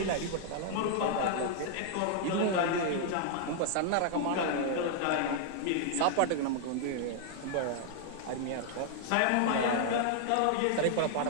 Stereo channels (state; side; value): different; both; correlation -0.01